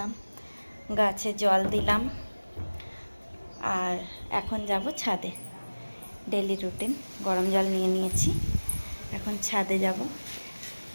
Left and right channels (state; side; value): inverted; both; correlation -1.00